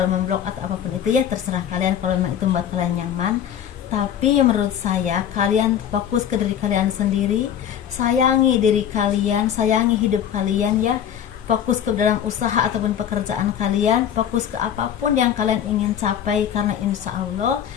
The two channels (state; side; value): quieter; right; 9.5 dB